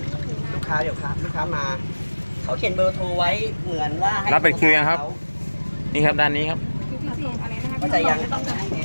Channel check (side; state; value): both; inverted; correlation -1.00